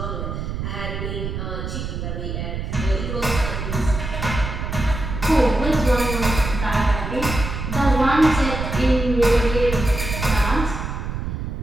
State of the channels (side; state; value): right; noise; rumble, 5 dB below the sound